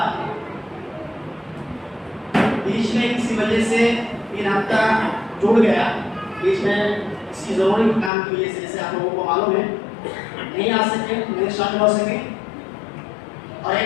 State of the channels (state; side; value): drops out; right; at 8.1 s